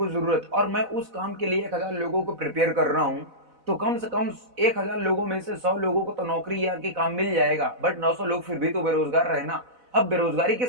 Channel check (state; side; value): late; left; 4.0 ms